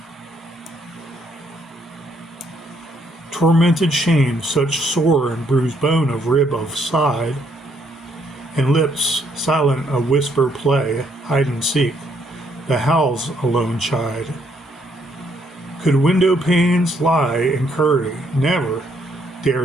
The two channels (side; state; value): both; normal; correlation 0.71